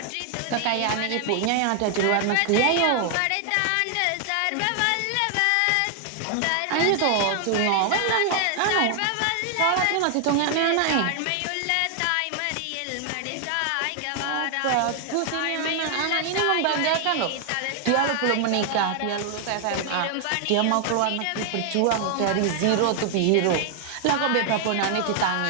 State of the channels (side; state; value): both; different; correlation 0.00